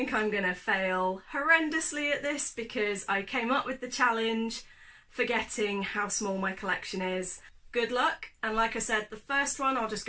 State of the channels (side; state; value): both; identical; correlation 1.00